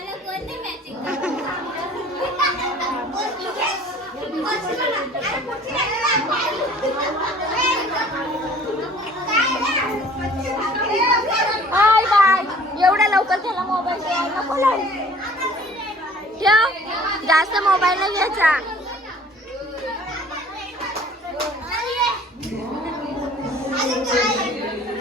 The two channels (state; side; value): normal; both; correlation 0.51